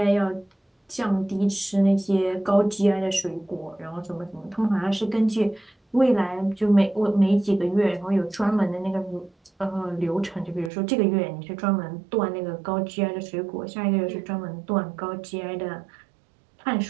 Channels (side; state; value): left; drops out; at 10.7 s